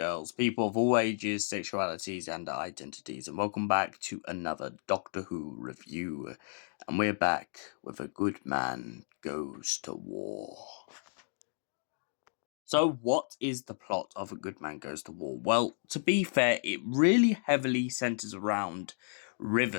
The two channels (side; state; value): right; silent; digital silence